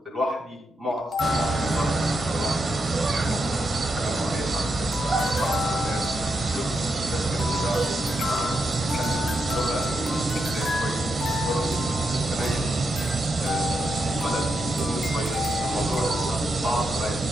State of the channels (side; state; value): both; normal; correlation 0.84